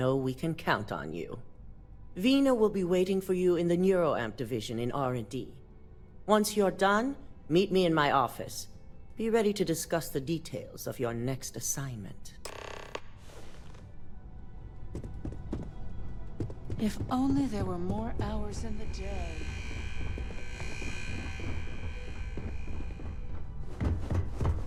we can count on you. Vina will be waiting for you in the neuroamp division in R&D. Once you're done, meet me in my office. Be ready to discuss the details of your next assignment. If only there were more hours in the day.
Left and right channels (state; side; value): identical; both; correlation 1.00